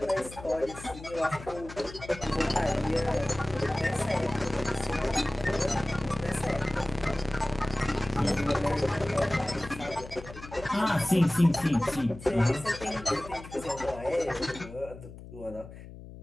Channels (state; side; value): noise; left; hum, 15 dB below the sound